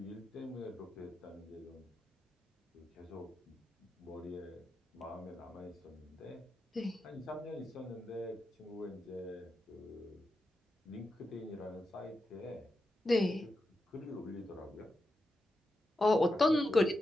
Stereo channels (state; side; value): normal; both; correlation 0.88